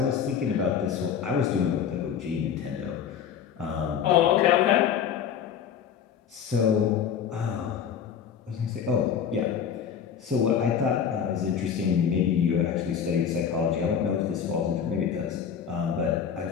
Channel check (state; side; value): quieter; right; 7.9 dB